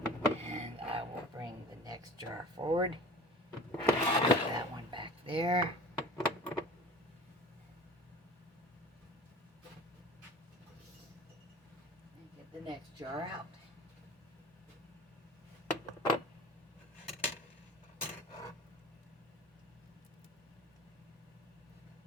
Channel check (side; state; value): both; normal; correlation 0.40